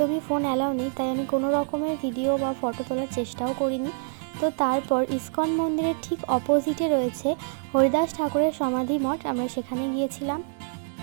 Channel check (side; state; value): left; silent; digital silence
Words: ফোন অ্যালাউ নেই, তাই আমি কোনো রকমের ভিডিও বা ফটো তোলার চেষ্টাও করিনি। তো তারপর ইস্কন মন্দিরের ঠিক অপোজিটে রয়েছে হরিদাস ঠাকুরের সমাধি মঠ, আমরা সেখানে গিয়েছিলাম।